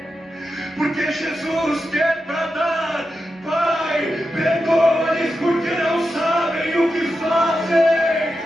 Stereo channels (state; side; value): normal; both; correlation 0.89